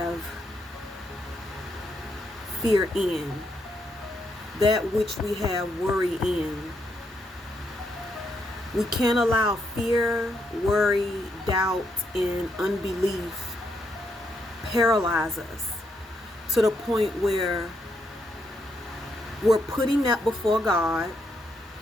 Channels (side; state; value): both; normal; correlation 0.78